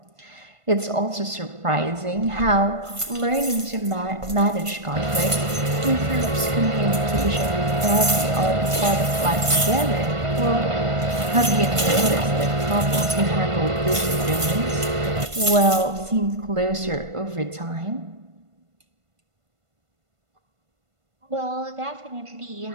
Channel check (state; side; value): late; left; 1.5 ms